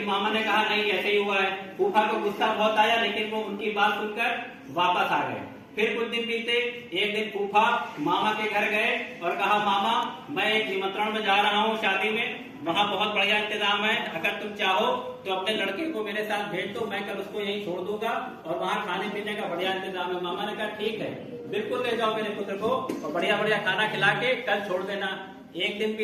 मामा ने कहा नहीं ऐसे ही हुआ है। फूफा को गुस्सा बहुत आया, लेकिन वो उनकी बात सुनकर वापस आ गए। फिर कुछ दिन बीते। एक दिन फूफा मामा के घर गए और कहा मामा मैं एक निमंत्रण में जा रहा हूँ शादी में, वहाँ बहुत बढ़िया इंतजाम है, अगर तुम चाहो तो अपने लड़के को मेरे साथ भेज दो, मैं कल उसको यहीं छोड़ दूंगा और वहाँ खाने पीने का बढ़िया इंतजाम है। मामा ने कहा ठीक है, बिल्कुल ले जाओ मेरे पुत्र को और बढ़िया बढ़िया खाना खिला के कल छोड़ देना। एक दिन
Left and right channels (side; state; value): both; identical; correlation 1.00